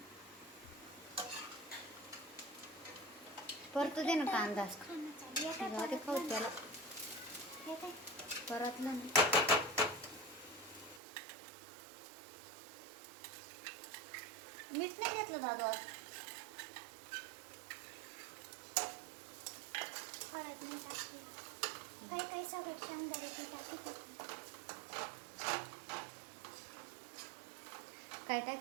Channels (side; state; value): left; drops out; at 11.0 s